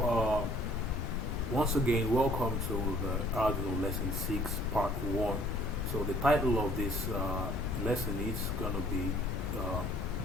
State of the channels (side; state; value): both; normal; correlation 0.58